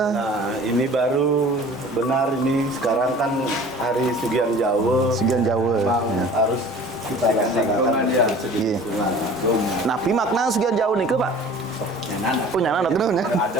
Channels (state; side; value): normal; both; correlation 0.45